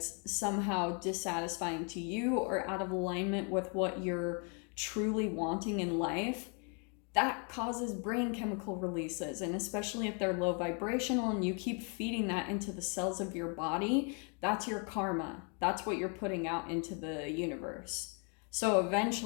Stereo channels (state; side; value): quieter; right; 37.7 dB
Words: somehow dissatisfying to you or out of alignment with what you're truly wanting in life, that causes brain chemical releases. And especially if they're low vibrational and you keep feeding that into the cells of your body, that's your karma. That's what you're putting out into the universe. So